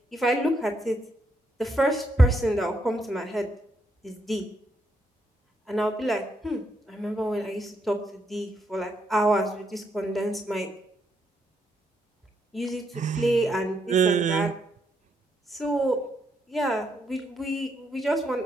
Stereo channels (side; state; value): both; normal; correlation 0.78